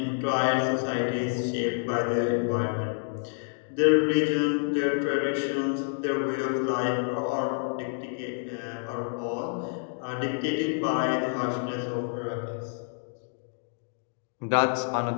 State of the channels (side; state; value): right; silent; digital silence